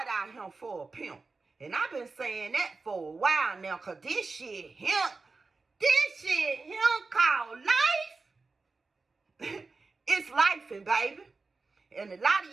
out here for a pimp. And I've been saying that for a while now, because this shit called life. It's lifing, baby. And a lot of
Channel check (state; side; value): quieter; left; 4.0 dB